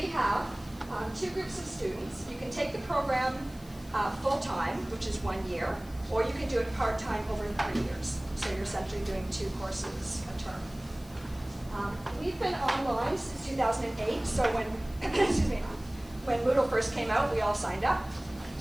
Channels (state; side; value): noise; left; hiss, 23 dB below the sound